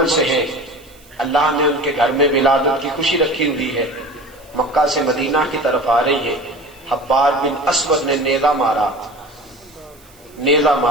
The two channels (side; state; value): right; noise; hiss, 27 dB below the sound